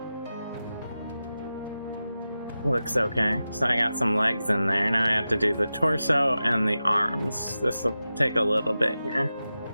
Looks okay. So I got some legs in there. Now I have to do the torso and the arms. This will take a little bit here.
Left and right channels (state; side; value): inverted; both; correlation -0.93